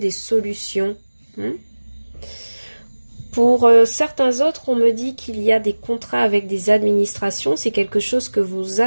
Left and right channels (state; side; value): inverted; both; correlation -1.00